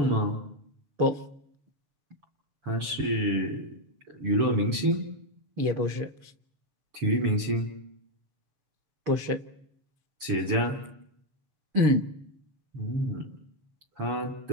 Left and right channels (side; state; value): left; late; 7.0 ms